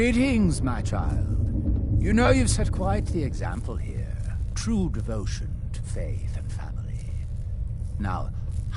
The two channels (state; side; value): identical; both; correlation 1.00